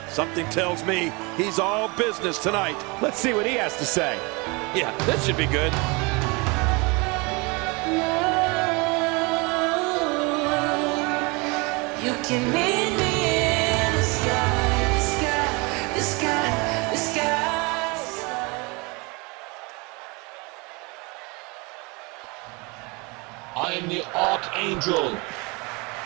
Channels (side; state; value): left; quieter; 27.9 dB